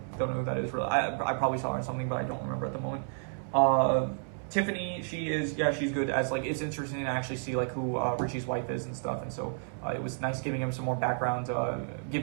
know who that is really. I probably saw her in something, but I don't remember at the moment. Tiffany, she's good as like, it's interesting to actually see like who Richie's wife is and stuff, and so it was nice giving him some more background,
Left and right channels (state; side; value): silent; left; 57 dB below the other